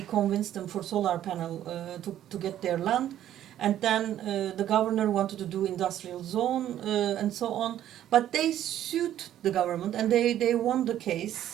convince them for solar panel to get their land, and then the governor wanted to do industrial zone and so on, but they sued the government and they won the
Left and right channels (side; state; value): left; quieter; 11.7 dB